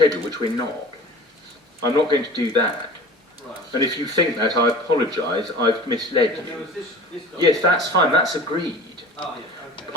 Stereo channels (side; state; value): both; normal; correlation 0.40